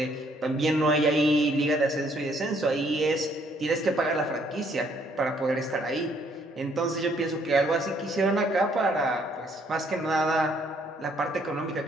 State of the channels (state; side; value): normal; both; correlation 0.66